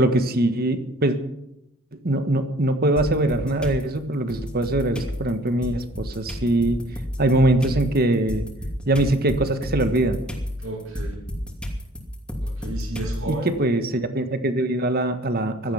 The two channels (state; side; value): normal; both; correlation 0.53